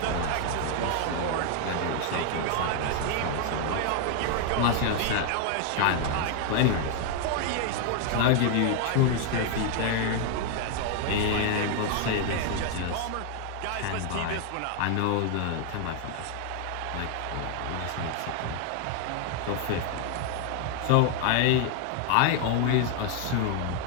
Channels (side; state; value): both; different; correlation 0.00